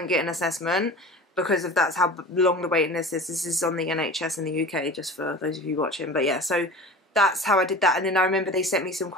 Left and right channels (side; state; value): both; normal; correlation 0.37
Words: get an assessment, because of that's how long the waiting list is. This is on the NHS in the UK, just for those of you watching. But yeah, so that's how I did that. And then I remember they sent me some